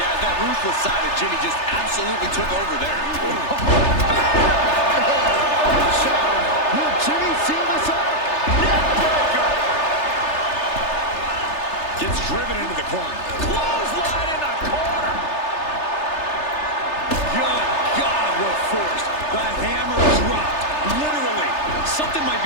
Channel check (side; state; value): right; late; 3.3 ms